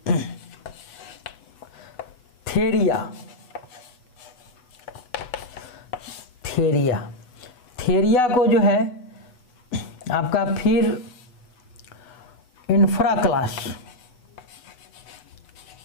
थेरिया को जो है आपका फिर इंफ्रा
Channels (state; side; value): late; right; 8.1 ms